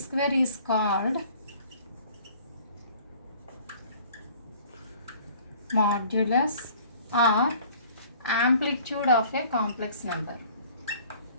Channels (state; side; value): inverted; both; correlation -0.52